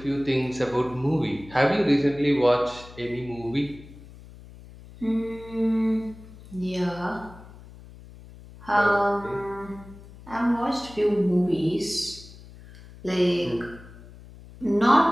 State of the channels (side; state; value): left; noise; hum, 19 dB below the sound